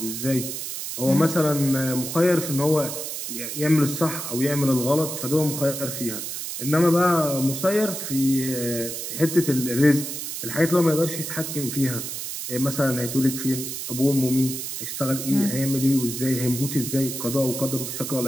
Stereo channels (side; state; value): right; noise; hiss, 6 dB below the sound